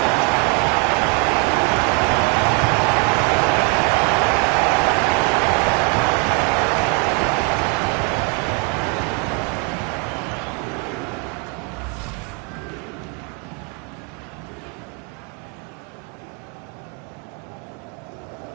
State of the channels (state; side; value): quieter; left; 32.1 dB